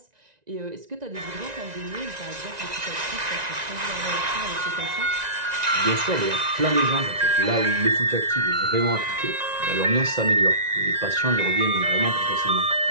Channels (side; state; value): left; late; 1.9 ms